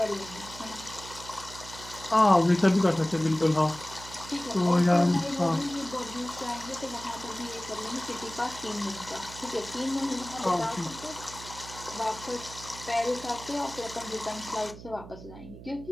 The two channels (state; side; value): noise; right; hum, 15 dB below the sound